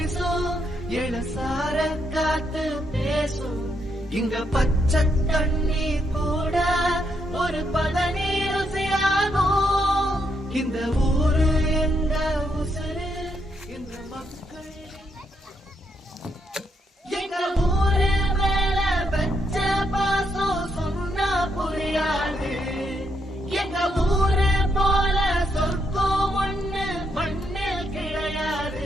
இளசார காத்து பேசும். இங்க பச்சை தண்ணி கூட ஒரு பதனி ருசியாகும். இந்த ஊரு எங்க உசுரு இந்த மக்கள். எங்க ஊரு மேல வச்ச பாசம் சொன்னா புரியாது. எங்க ஊரு போல சொர்க்கம் ஒண்ணு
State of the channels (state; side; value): normal; both; correlation 0.78